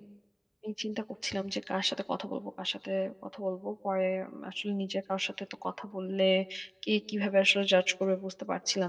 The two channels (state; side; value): identical; both; correlation 1.00